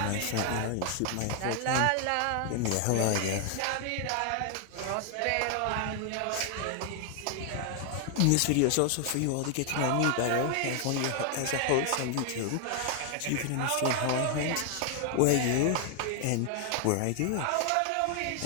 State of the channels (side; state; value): both; different; correlation 0.00